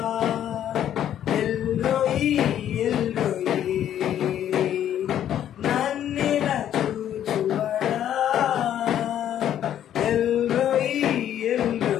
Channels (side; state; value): right; quieter; 10.7 dB